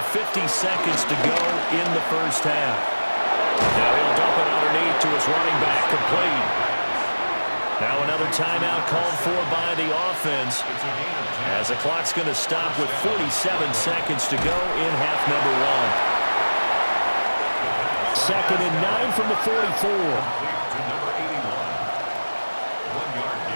50 seconds to go in the first half. Now he'll dump it underneath to his running back, complete. Now another timeout called for by the offense as the clock's going to stop with 47 seconds to go in half number 1. 2nd and 9 from the 44.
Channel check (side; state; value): both; inverted; correlation -1.00